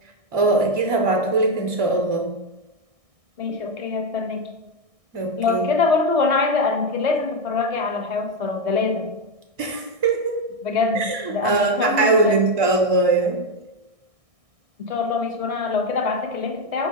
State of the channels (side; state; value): left; late; 1.6 ms